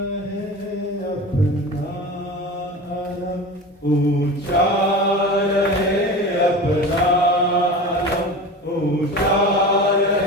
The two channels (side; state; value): both; normal; correlation 0.32